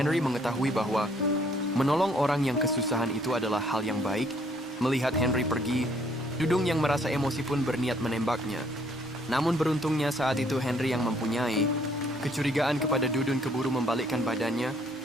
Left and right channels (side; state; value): both; normal; correlation 0.64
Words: mengetahui bahwa menolong orang yang kesusahan itu adalah hal yang baik. Melihat Henry pergi, Dudung yang merasa emosi pun berniat menembaknya. Namun beruntungnya saat itu Henry yang mempunyai kecurigaan kepada Dudun keburu membalikkan badannya,